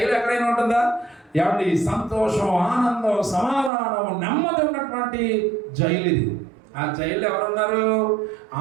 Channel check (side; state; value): left; drops out; at 3.7 s